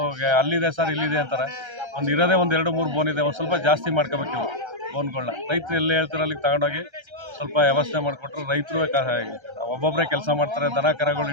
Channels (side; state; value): left; late; 1.3 ms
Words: ಅಲ್ಲಿದೆ ಸರ್ ಇಲ್ಲಿದೆ ಅಂತಾರೆ. ಒಂದು ಇರೋದೇ 1-2-3 ಬೋನ್ ಇದೆ. ಒಂದು ಸ್ವಲ್ಪ ಜಾಸ್ತಿ ಮಾಡ್ಕೋಬೇಕು ಇವು ಬೋನ್ಗಳನ್ನ. ರೈತರು ಎಲ್ಲಿ ಹೇಳ್ತಾರೆ ಅಲ್ಲಿಗೆ ತಗೊಂಡೋಗಿ ಸ್ವಲ್ಪ ವ್ಯವಸ್ಥೆ ಮಾಡಿಕೊಟ್ರೆ ರೈತರು ಒಬ್ಬೊಬ್ಬರೇ ಕೆಲಸ ಮಾಡ್ತಾರೆ. ದನ ಕರಗಳು